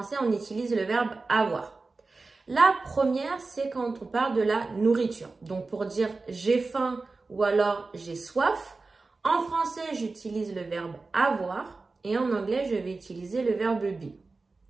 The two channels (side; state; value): left; quieter; 3.8 dB